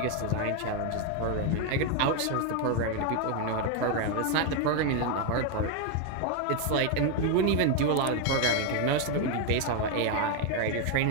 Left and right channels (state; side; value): different; both; correlation 0.01